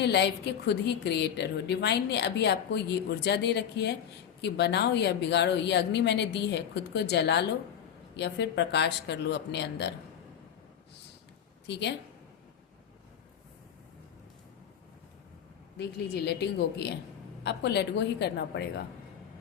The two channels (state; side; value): quieter; right; 8.8 dB